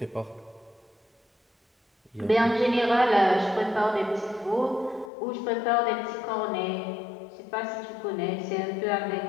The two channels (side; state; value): right; drops out; at 5.1 s